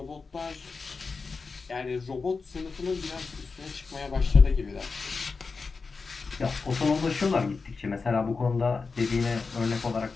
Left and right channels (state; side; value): quieter; right; 4.5 dB